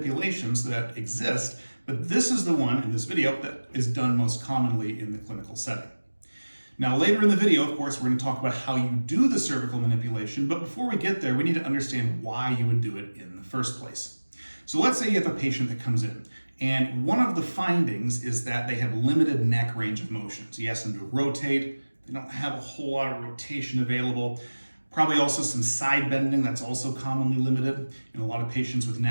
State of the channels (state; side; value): inverted; both; correlation -1.00